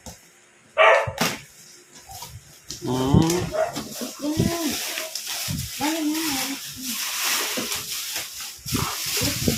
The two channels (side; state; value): both; identical; correlation 1.00